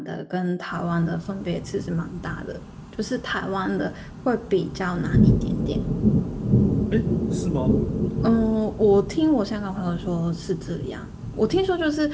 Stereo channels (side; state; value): both; identical; correlation 1.00